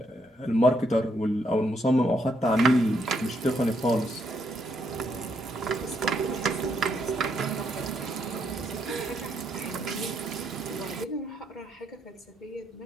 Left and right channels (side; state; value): both; normal; correlation 0.75